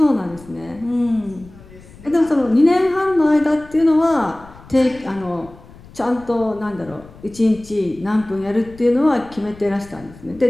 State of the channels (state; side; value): noise; left; rumble, 21 dB below the sound